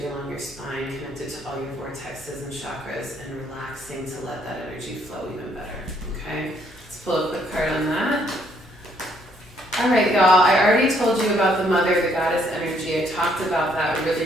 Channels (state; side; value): normal; both; correlation 0.68